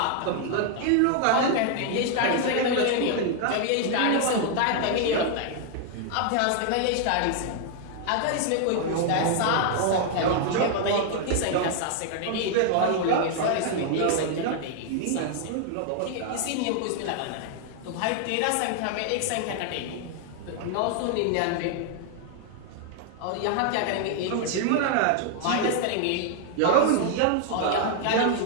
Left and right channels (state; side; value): different; both; correlation 0.00